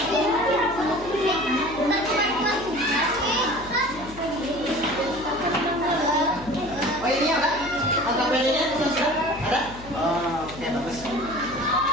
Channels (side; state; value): left; noise; hum, 16 dB below the sound